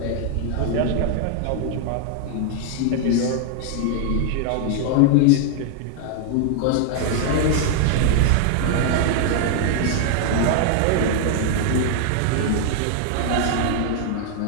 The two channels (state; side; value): different; both; correlation 0.00